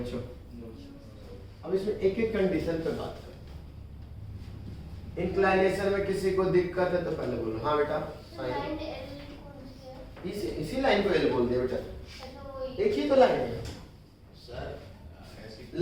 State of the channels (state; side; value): identical; both; correlation 1.00